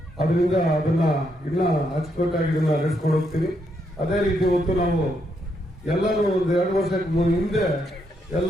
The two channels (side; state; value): both; normal; correlation 0.77